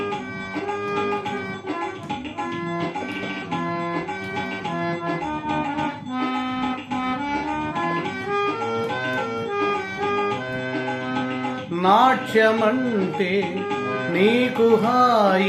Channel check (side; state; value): both; identical; correlation 1.00